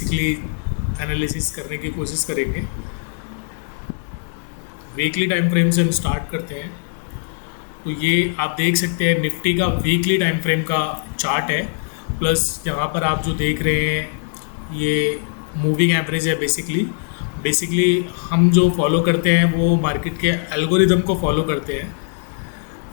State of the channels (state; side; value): silent; right; digital silence